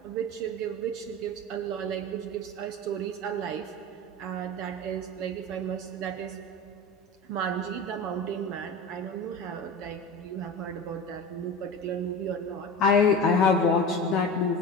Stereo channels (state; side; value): normal; both; correlation 0.30